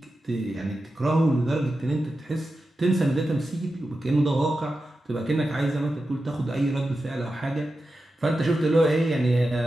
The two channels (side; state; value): both; normal; correlation 0.91